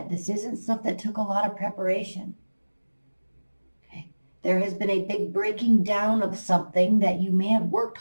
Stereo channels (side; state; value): both; inverted; correlation -1.00